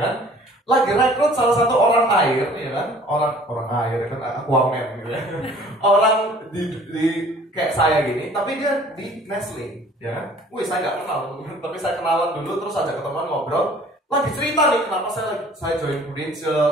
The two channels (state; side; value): normal; both; correlation 0.52